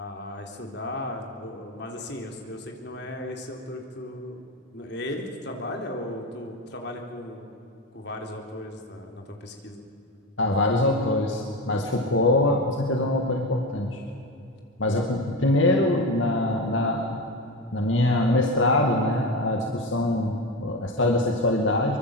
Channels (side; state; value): both; normal; correlation 0.21